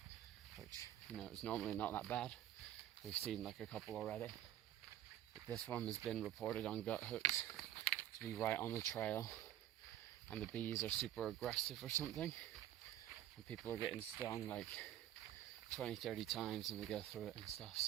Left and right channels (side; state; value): left; quieter; 12.4 dB